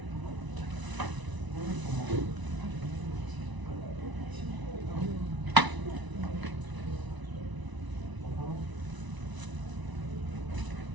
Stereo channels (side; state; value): left; late; 1.0 ms